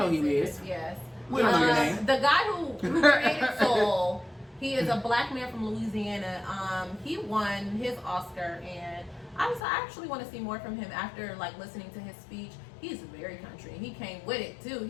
who he is. Yes. We don't know your name. The guy who created Soul, he is a black man from Louisiana. He won his Oscar, and I actually want to see more from him after like listening to his speech. He's very country. He came with it too.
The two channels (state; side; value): drops out; right; at 9.6 s